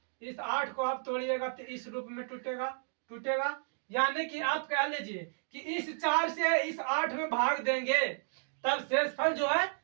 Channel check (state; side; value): silent; left; digital silence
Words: तोड़िएगा तो इस रूप में टूटेगा, यानी कि आप कह लीजिए कि इस 4 से इस 8 में भाग देंगे तब शेषफल जो है